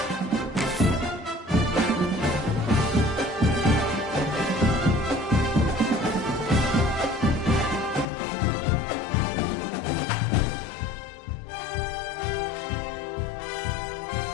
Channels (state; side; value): drops out; right; at 8.1 s